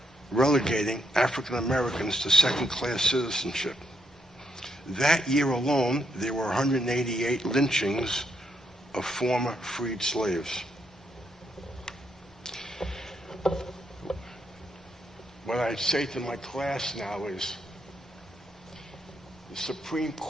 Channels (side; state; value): both; normal; correlation 0.77